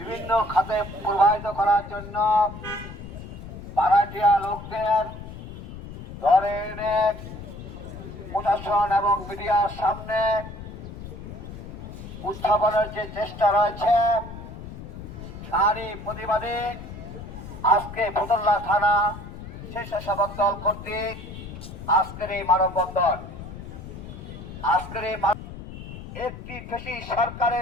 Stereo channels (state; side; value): noise; left; rumble, 12 dB below the sound